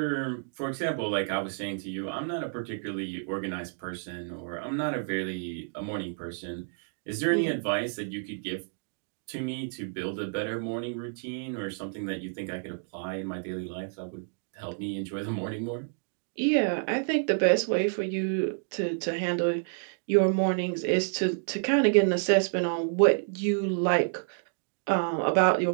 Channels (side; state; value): left; silent; digital silence